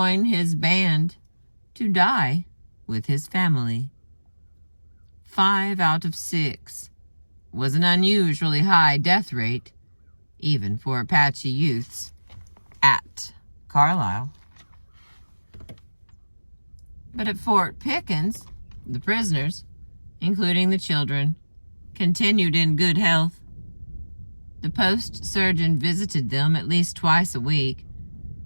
his band to die with his family. 5 out of 6 was an unusually high death rate, even for Apache youths at Carlisle. But at Fort Pickens, the prisoners, including the children, continued in good health. The post surgeon visited them at least twice a week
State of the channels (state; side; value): inverted; both; correlation -1.00